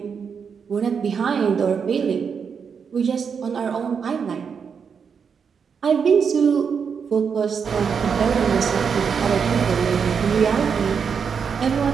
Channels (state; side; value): quieter; left; 6.4 dB